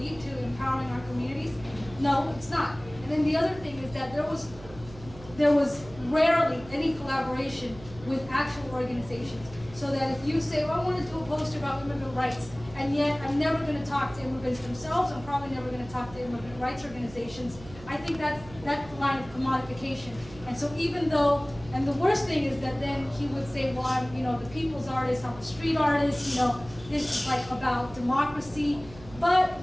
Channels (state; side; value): noise; right; hum, 17 dB below the sound